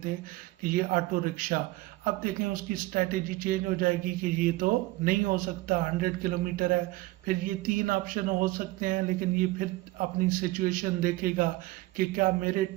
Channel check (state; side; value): quieter; left; 19.6 dB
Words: कि ये ऑटो रिक्शा। अब देखें उसकी स्ट्रेटेजी चेंज हो जाएगी कि ये तो नहीं हो सकता, 100 किलोमीटर है। फिर ये 3 ऑप्शन हो सकते हैं, लेकिन ये फिर अपनी सिचुएशन देखेगा कि क्या मेरे